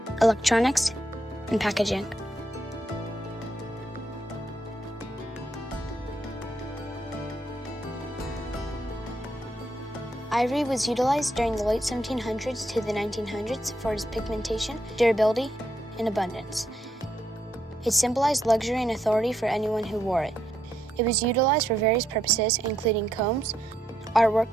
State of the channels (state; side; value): normal; both; correlation 0.78